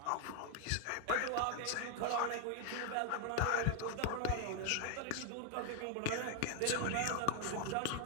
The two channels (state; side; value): different; both; correlation 0.00